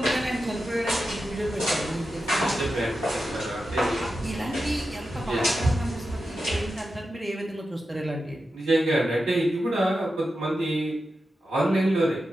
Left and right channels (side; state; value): both; normal; correlation 0.90